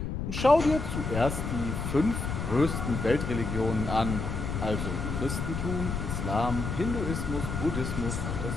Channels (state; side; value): noise; left; rumble, 3 dB below the sound